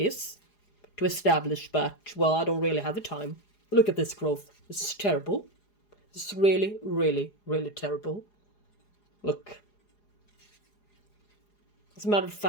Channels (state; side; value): late; right; 4.9 ms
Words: to establish, but, well, I don't really have the time. Look at this growth. This is terrible. This is really, really, really terrible. Look. As a matter of